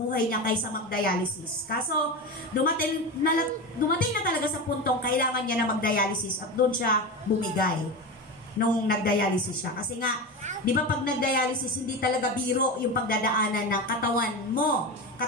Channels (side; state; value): both; normal; correlation 0.22